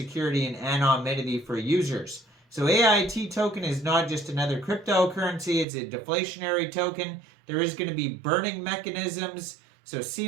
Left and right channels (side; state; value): left; drops out; at 5.7 s